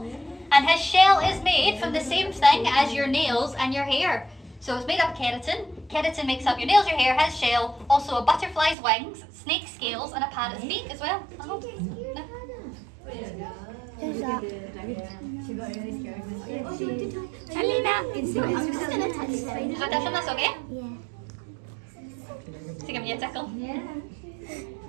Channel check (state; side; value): drops out; left; at 8.8 s